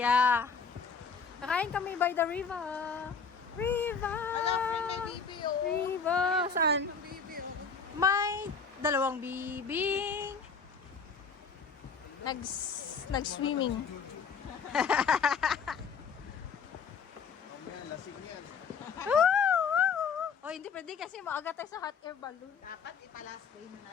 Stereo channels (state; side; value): quieter; right; 5.5 dB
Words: Kakain kami by the river. River! may bibi oh. River! Saan? Ang bibi oh. May dalawang bibing. Nag-swimming. Oy, hindi pwede kasi maaga tayo sa hot air balloon. Dapat ipa-last day mo na